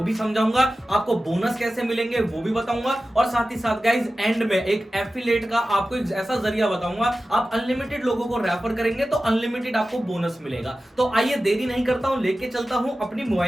भी समझाऊंगा, आपको बोनस कैसे मिलेंगे वो भी बताऊंगा और साथ ही साथ गाइस एंड में एक एफिलिएट का आपको एक ऐसा जरिया बताऊंगा, आप अनलिमिटेड लोगों को रेफर करेंगे तो अनलिमिटेड आपको बोनस मिलेगा। तो आइए देरी नहीं करता हूं, लेके चलता हूं अपनी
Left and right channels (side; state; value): both; normal; correlation 0.94